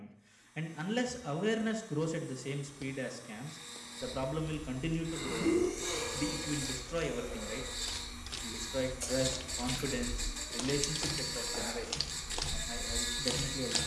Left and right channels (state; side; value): identical; both; correlation 1.00